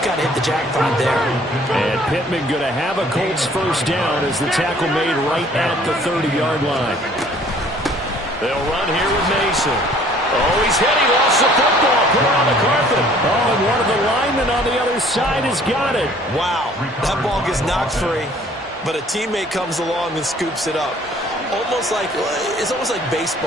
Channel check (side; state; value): both; normal; correlation 0.56